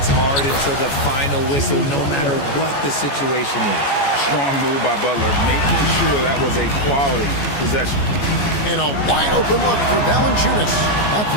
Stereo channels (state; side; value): late; right; 14 ms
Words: hard until the final whistle, no matter what the situation is. Strong move by Butler, making sure that was a quality possession. And a wide open look for Valanciunas. That